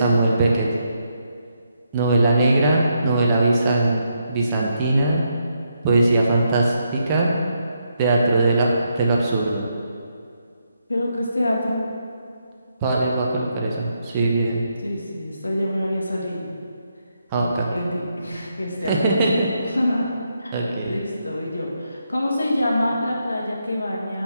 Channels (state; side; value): inverted; both; correlation -0.79